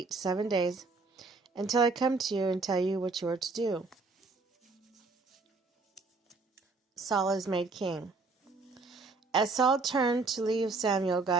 7 days until I come to you and tell you what you are to do. Saul is made king. As Saul turned to leave Samuel,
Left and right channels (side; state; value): left; quieter; 3.9 dB